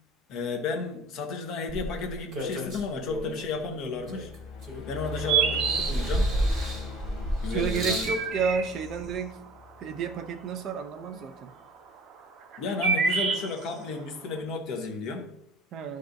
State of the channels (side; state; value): both; normal; correlation 0.44